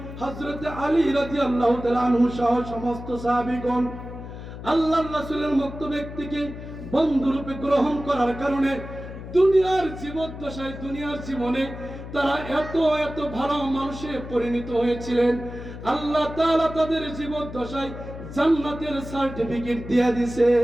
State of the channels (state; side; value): noise; left; hum, 11 dB below the sound